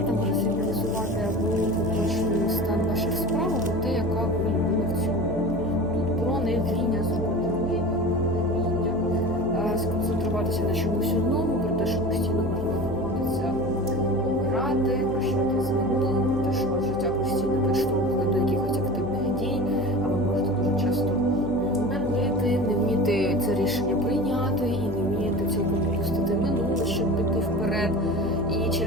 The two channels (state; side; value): noise; left; hum, 14 dB below the sound